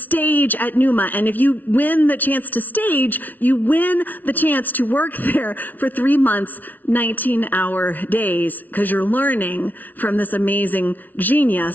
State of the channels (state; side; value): late; right; 0.080 ms